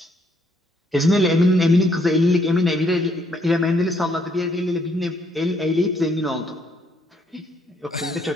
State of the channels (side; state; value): both; normal; correlation 0.70